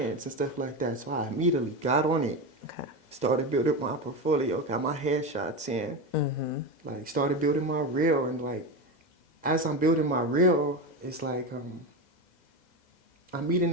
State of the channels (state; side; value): late; right; 2.0 ms